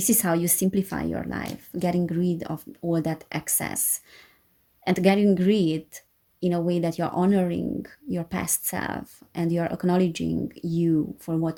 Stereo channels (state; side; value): identical; both; correlation 1.00